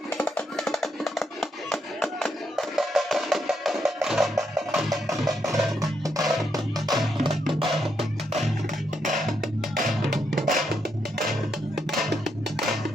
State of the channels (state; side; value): normal; both; correlation 0.79